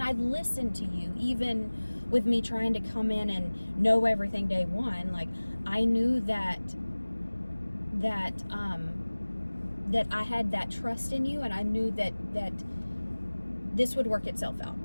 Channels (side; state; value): both; inverted; correlation -1.00